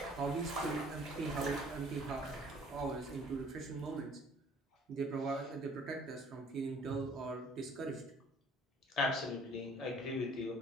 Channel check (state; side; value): normal; both; correlation 0.55